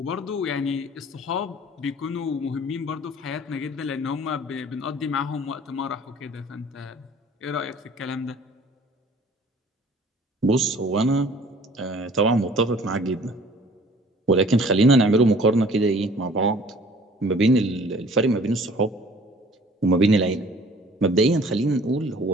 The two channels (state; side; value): normal; both; correlation 0.52